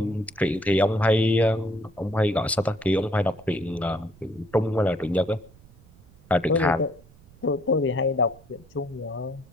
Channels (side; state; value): right; noise; rumble, 25 dB below the sound